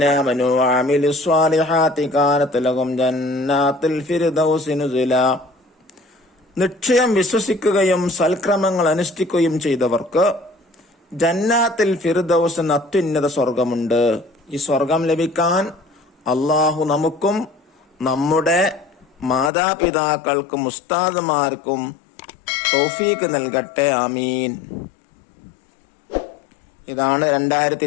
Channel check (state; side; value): drops out; right; at 19.5 s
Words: ആമനൂ വഅമിലുസ് സ്വാലിഹാത്തി കാനത് ലഹും ജന്നാത്തുൽ ഫിർദൗസി നുസുലാ. നിശ്ചയം വിശ്വസിക്കുകയും സൽക്രമങ്ങൾ അനുഷ്ഠിക്കുകയും ചെയ്തവർക്ക് ജന്നാത്തുൽ ഫിർദൗസ് എന്ന അത്യുന്നത സ്വർഗമുണ്ട്. ഈ സ്വർഗം ലഭിക്കാൻ അള്ളാഹു നമുക്കും നമ്മുടെ മാതാപിതാക്കൾക്കും ഉസ്താദുമാർക്കും തൗഫീഖ് നൽകട്ടെ. ആമീൻ. ഇതാണ്